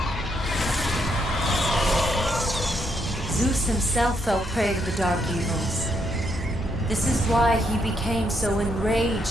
Zeus himself fell prey to the dark evils. This is why he became so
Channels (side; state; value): both; normal; correlation 0.76